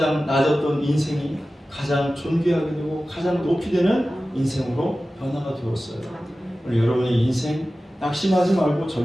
낮았던 인생이 가장 존귀하게 되고 가장 높이 되는 인생으로 변화가 되었어요. 오늘 여러분의 인생 낙심하지 말고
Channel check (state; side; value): normal; both; correlation 0.95